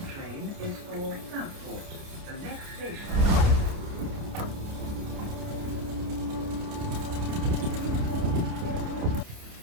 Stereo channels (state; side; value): late; left; 29 ms